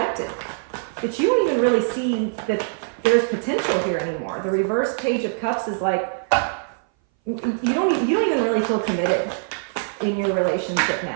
that you don't even really see that there's potential here anymore. The reverse Page of Cups is like, you don't even really feel committed in your relationship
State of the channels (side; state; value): left; silent; 60 dB below the other